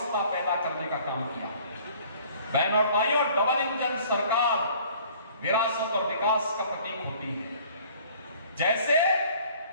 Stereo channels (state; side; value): inverted; both; correlation -0.53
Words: पैदा करने का काम किया। बहन और भाइयों, डबल इंजन सरकार विरासत और विकास का प्रतीक होती है। जैसे